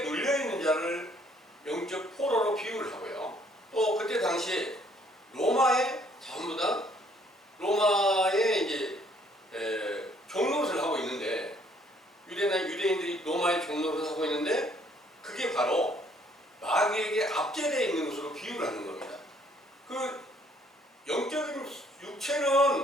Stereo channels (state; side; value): normal; both; correlation 0.63